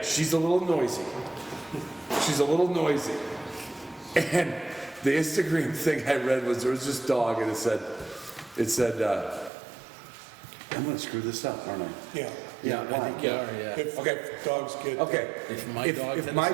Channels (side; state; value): left; drops out; at 9.5 s